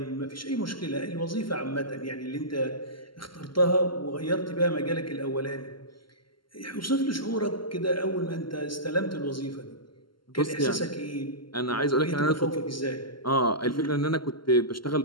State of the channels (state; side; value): late; right; 0.72 ms